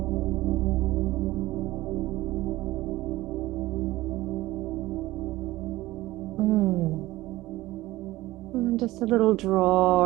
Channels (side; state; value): left; quieter; 17.8 dB